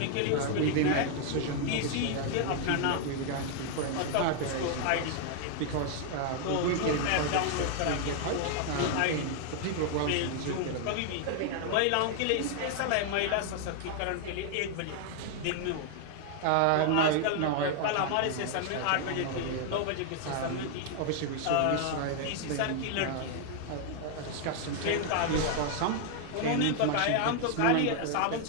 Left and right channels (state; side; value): different; both; correlation 0.00